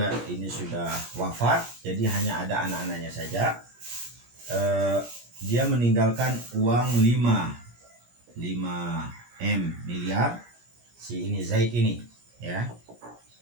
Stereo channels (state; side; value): late; left; 17 ms